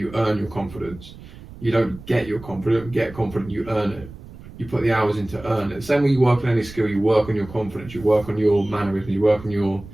earn your confidence. You don't get your confidence, get confident, you earn it. You put the hours in to earn it. Same way you work on any skill, you work on your confidence, you work on your mannerisms, you work on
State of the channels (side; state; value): right; noise; rumble, 17 dB below the sound